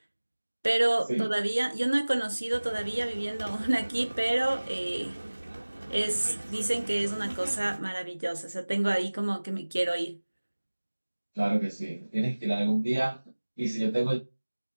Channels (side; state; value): both; inverted; correlation -1.00